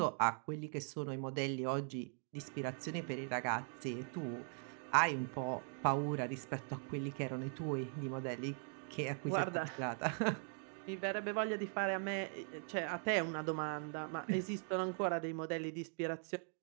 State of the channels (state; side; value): silent; left; 51 dB below the other